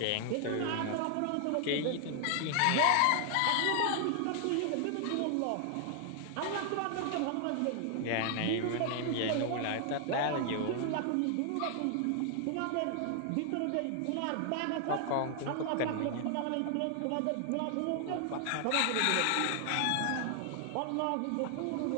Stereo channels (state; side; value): different; both; correlation 0.00